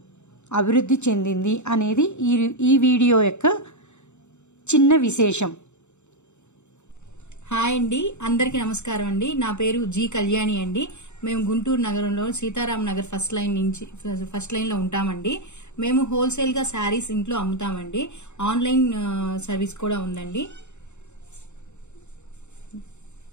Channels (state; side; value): late; right; 0.83 ms